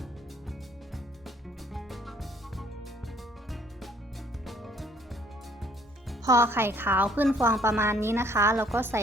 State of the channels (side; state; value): both; normal; correlation 0.61